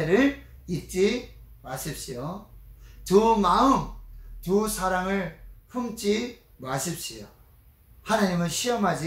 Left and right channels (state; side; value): identical; both; correlation 1.00